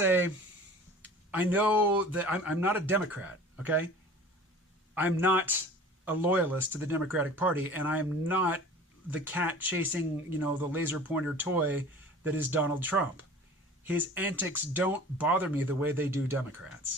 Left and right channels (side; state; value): both; normal; correlation 0.43